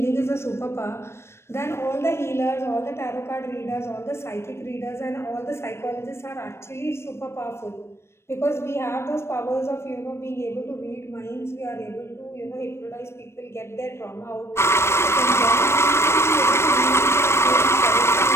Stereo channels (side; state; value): right; late; 0.12 ms